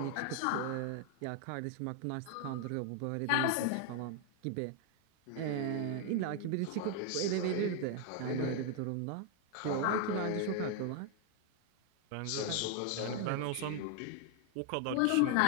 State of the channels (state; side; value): different; both; correlation 0.00